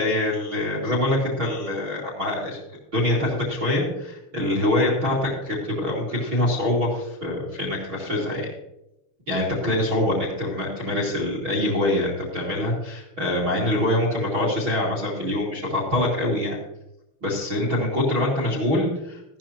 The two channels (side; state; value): left; late; 6.3 ms